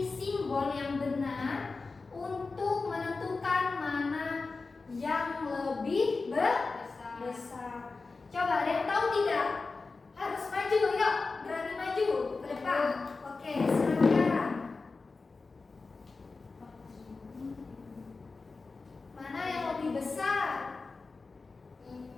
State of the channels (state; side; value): quieter; right; 4.0 dB